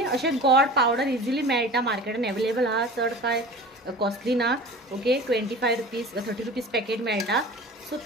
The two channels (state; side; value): normal; both; correlation 0.38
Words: अशे गोड पावडर इजिली मेळटा मार्केटान अवेलेबल आहा, चड काय कॉस्टली ना. ओके 25 रुपीज 30 रुपीज पॅकेट मेळटा. सो